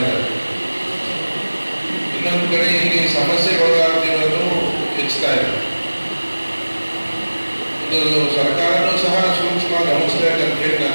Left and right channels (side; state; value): both; inverted; correlation -1.00